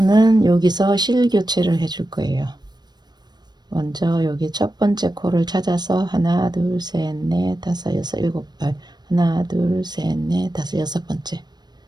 여기서 실 교체를 해줄 거예요. 먼저 여기 첫 번째 코를 찾아서 하나 둘 셋 넷 다섯 여섯 일곱 발 하나 둘 셋 넷 다섯 여섯 번째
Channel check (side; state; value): left; late; 0.20 ms